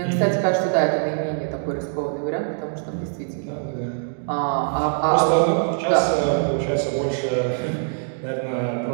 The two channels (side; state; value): left; silent; digital silence